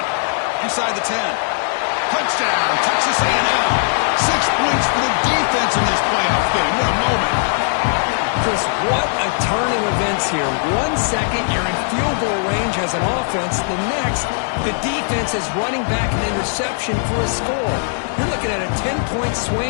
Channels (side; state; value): right; silent; digital silence